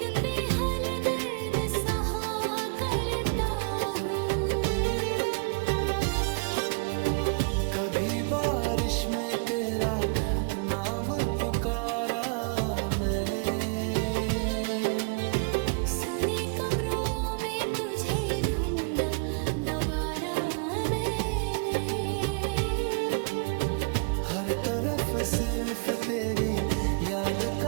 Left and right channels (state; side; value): quieter; left; 34.7 dB